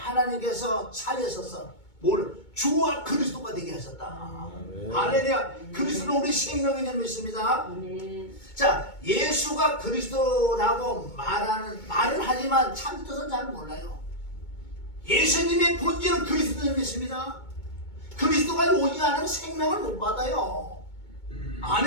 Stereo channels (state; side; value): late; right; 2.2 ms